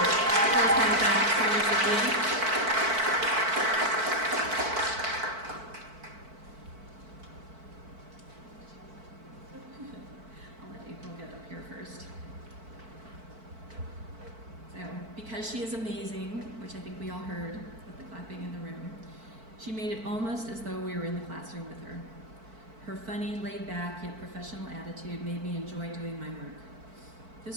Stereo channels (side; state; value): left; late; 4.5 ms